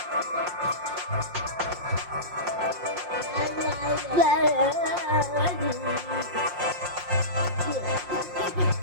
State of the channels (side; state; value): left; late; 5.6 ms